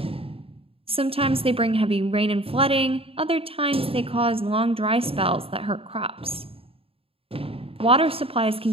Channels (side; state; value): left; late; 0.27 ms